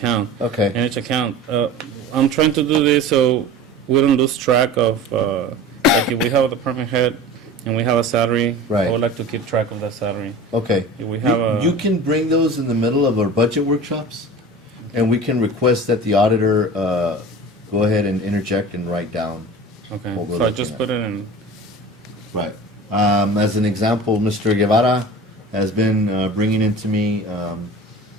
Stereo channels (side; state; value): both; normal; correlation 0.36